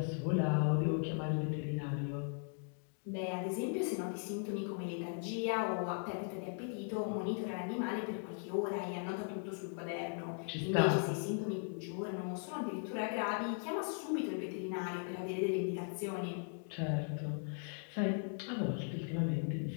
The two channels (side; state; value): right; silent; 52 dB below the other